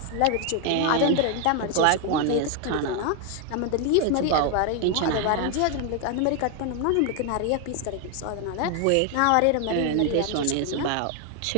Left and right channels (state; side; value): different; both; correlation 0.01